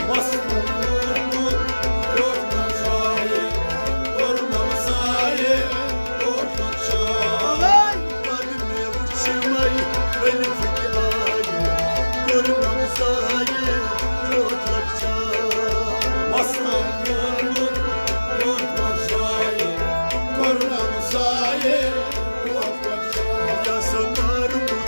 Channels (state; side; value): inverted; both; correlation -1.00